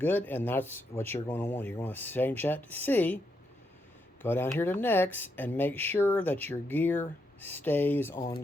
and that's what you're going to want. You're going to change that to C. Go down here to Next, and make sure that your gear stays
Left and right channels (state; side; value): normal; both; correlation 0.80